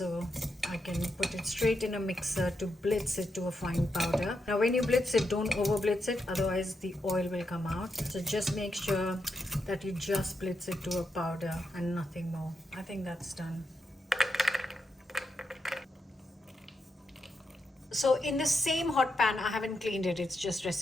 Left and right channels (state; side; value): normal; both; correlation 0.84